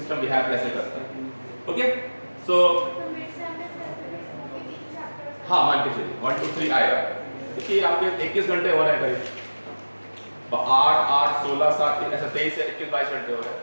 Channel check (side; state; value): both; inverted; correlation -1.00